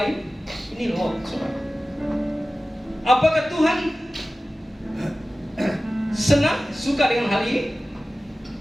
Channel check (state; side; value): normal; both; correlation 0.96